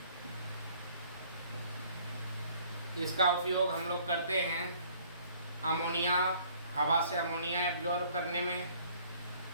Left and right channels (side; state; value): both; inverted; correlation -0.58